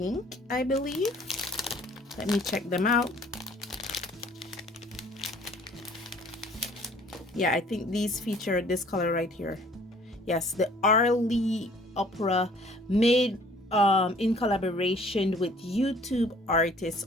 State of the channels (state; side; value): normal; both; correlation 0.55